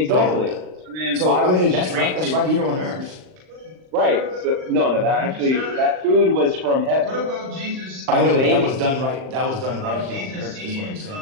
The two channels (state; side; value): late; left; 38 ms